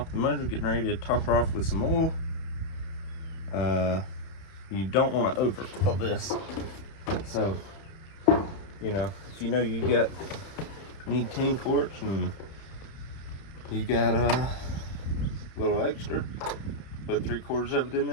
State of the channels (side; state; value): right; late; 31 ms